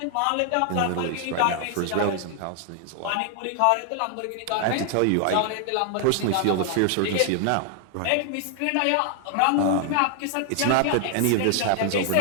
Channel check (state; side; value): different; both; correlation 0.00